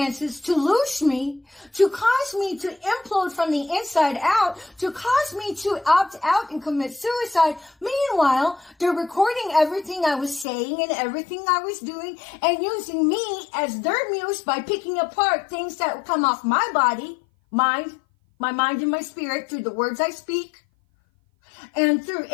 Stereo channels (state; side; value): drops out; right; at 10.5 s